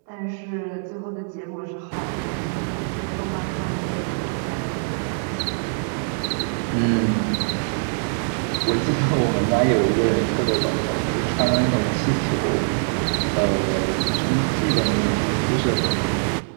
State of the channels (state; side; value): silent; left; 63 dB below the other